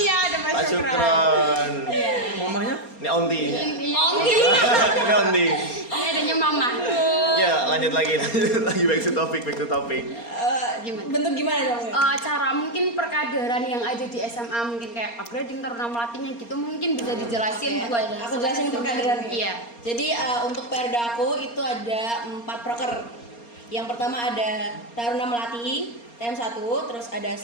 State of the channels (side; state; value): right; late; 4.3 ms